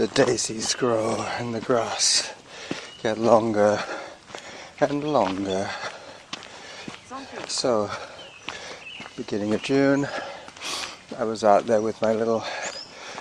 daisies grow and the grass get longer and longer. Zone 3. So, beginning of June, I was out there with my little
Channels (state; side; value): identical; both; correlation 1.00